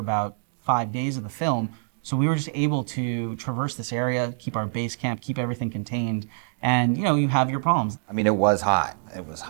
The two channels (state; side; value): silent; left; digital silence